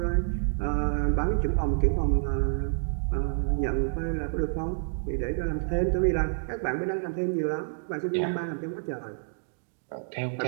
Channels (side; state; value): left; silent; digital silence